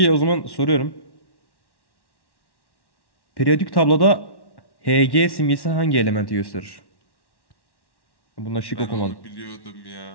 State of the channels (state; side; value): late; right; 1.1 ms